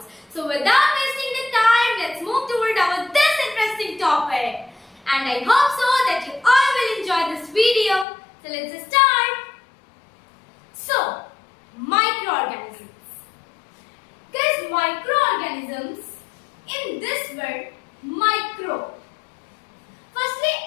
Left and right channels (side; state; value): right; drops out; at 8.1 s